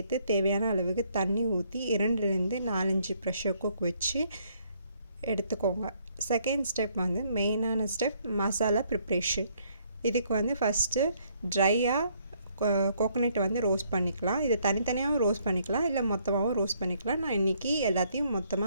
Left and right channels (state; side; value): inverted; both; correlation -0.68